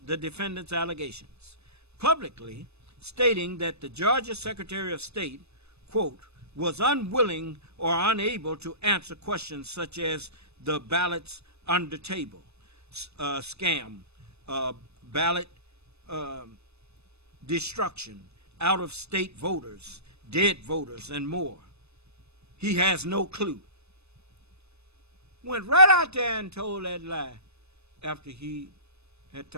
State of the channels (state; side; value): late; left; 0.80 ms